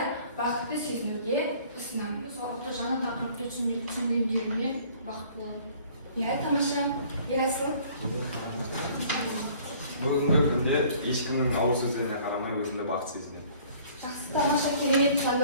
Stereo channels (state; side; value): inverted; both; correlation -0.54